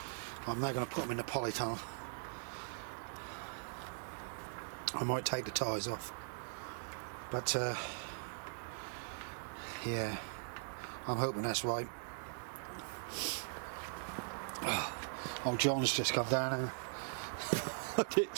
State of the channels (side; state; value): left; silent; digital silence